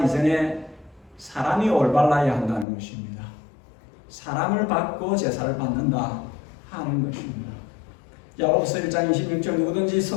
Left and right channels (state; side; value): drops out; right; at 2.7 s